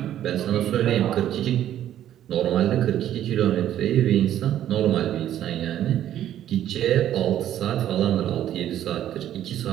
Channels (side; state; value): left; quieter; 11.5 dB